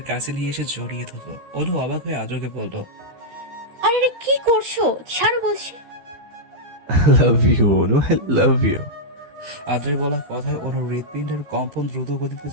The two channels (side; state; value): left; late; 13 ms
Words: কাছে নিয়ে এসে জড়িয়ে ধরলো। অনু অবাক হয়ে আদ্রকে বলল, আরে আরে, কি করছো? ছাড়ো বলছি। Love you Anu, love you. আদ্রের বলা কথায় অনুর হৃৎপিণ্ডের কম্পন দ্রুত গতিতে